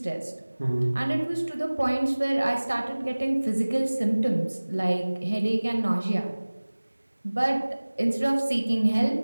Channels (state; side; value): inverted; both; correlation -1.00